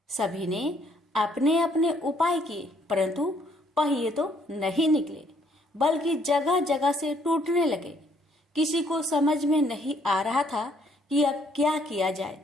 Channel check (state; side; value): normal; both; correlation 0.66